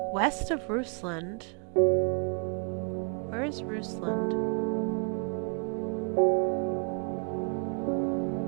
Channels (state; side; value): quieter; left; 38.6 dB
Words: west of Rusland. Where is Rusland?